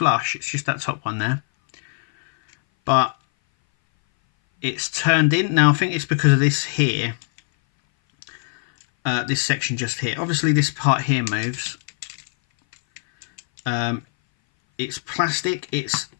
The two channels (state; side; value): silent; right; 59 dB below the other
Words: It's just that top one there, but it's turned in. Now I think it's because of this here, this section just here. Obviously this part here moves. It's plastic. It's